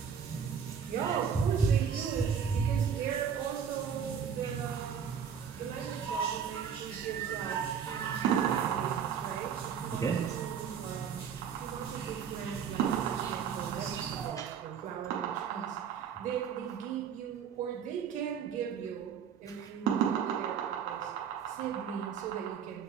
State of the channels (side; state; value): left; quieter; 7.4 dB